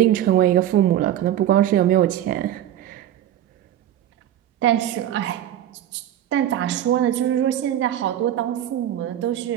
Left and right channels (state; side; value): quieter; left; 11.6 dB